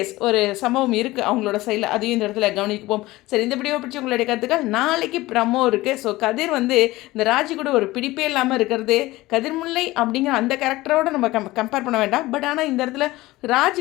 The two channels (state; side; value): quieter; right; 18.7 dB